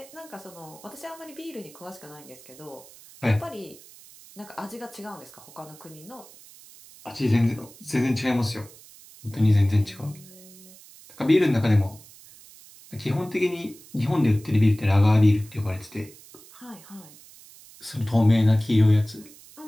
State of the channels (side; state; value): right; noise; hiss, 21 dB below the sound